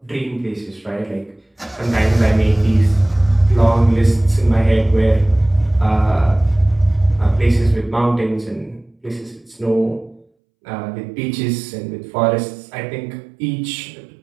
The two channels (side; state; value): left; drops out; at 10.2 s